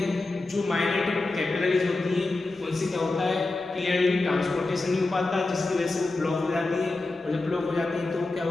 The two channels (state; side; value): quieter; right; 3.2 dB